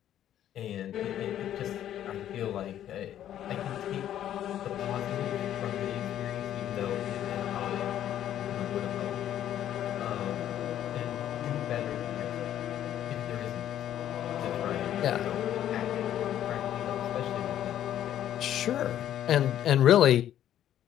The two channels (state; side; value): quieter; right; 11.2 dB